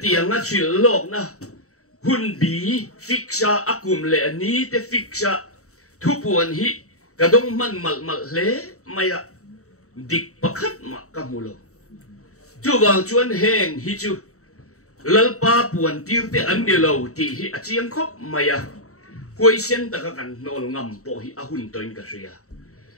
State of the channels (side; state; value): right; late; 0.65 ms